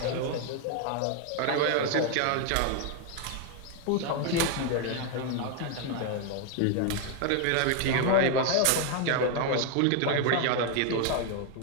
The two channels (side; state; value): both; different; correlation 0.01